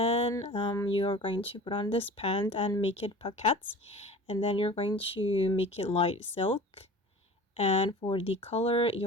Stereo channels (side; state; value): both; normal; correlation 0.40